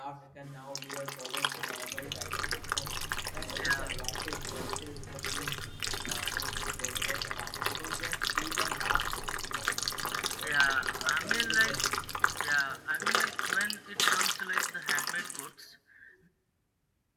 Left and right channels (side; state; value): both; identical; correlation 1.00